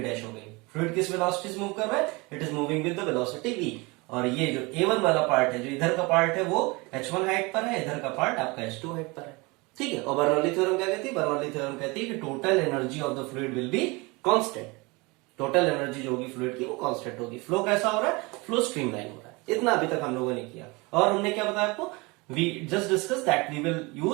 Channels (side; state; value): left; quieter; 25.7 dB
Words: हो गई। फ्लूइड किस वेलोसिटी से मूव कर रहा है, it is moving with the velocity v। और ये जो A1 वाला पार्ट है, जो इधर का पार्ट है वो H1 हाइट पर है, इधर का पार्ट आपका H2 हाइट पर है, ठीक है। और बर्नौली थ्योरम क्या कहती है, बर्नौली थ्योरम कहती है कि total energy of the fluid will be constant. Total energy जो होगी फ्लूइड की वो कांस्टेंट होगी। फ्लो कैसा हो रहा है, फ्लो स्ट्रीमलाइन हो रहा है। इतना अभी तक हम लोगों ने किया। और हमने क्या बताया आपको, we just discuss that we will